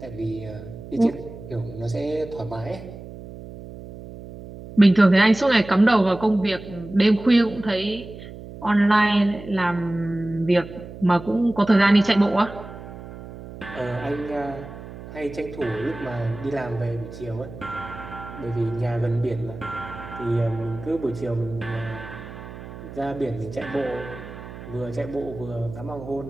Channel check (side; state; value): right; noise; hum, 14 dB below the sound